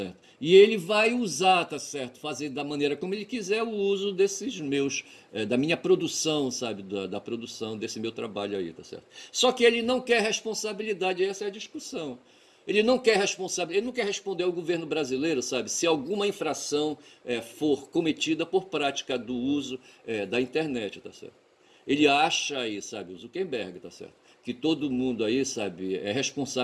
E ele vai usar, tá certo? Fazer da maneira como ele quiser o uso desses meus, da minha produção, sabe? Da produção desse meu trabalho aí, tá certo? Só que ele não quer responsabilidade, essa é a discussão. Ele não quer ele não quer responder ao governo brasileiro, sabe, se alguma infração for cometida por prática do uso da internet, tá certo? Ele acha aí, sabe, o Zuckerberg, tá certo? Que todo mundo aí, sabe, é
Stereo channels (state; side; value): identical; both; correlation 1.00